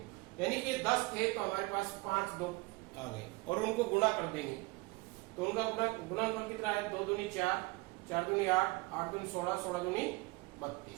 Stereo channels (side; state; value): left; quieter; 24.3 dB